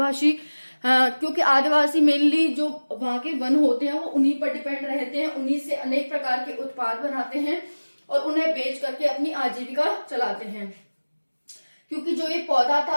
क्योंकि आदिवासी मेनली जो वहां के वन होते हैं वो उन्हीं पर डिपेंड रहते हैं, उन्हीं से अनेक प्रकार के उत्पाद बनाते हैं और उन्हें बेच करके अपनी आजीविका चलाते हैं। क्योंकि जो ये पौधा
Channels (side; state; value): both; inverted; correlation -1.00